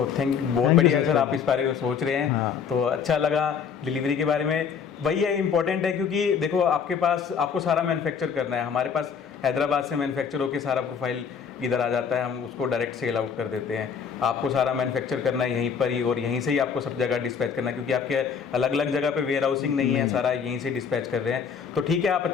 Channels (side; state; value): right; quieter; 6.7 dB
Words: बढ़िया है सर, आप इस बारे में सोच रहे हैं। हाँ। तो अच्छा लगा डिलीवरी के बारे में। वही है, इम्पोर्टेंट है, क्योंकि देखो आपके पास आपको सारा मैन्युफैक्चर करना है। हमारे पास हैदराबाद से मैन्युफैक्चर होकर सारा प्रोफाइल इधर आ जाता है, हम उसको डायरेक्ट सेल आउट कर देते हैं। आपको सारा मैन्युफैक्चर करना है यहीं पर ही, और यहीं से ही आपको सब जगह डिस्पैच करना है, क्योंकि आपके अलग अलग जगह पे वेयर हाउसिंग नहीं है, सारा यहीं से डिस्पैच कर रहे हैं। तो ठीक है, आप